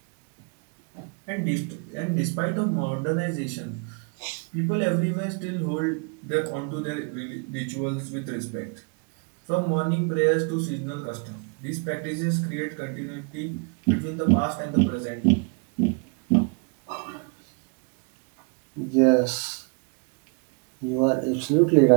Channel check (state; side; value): quieter; left; 36.2 dB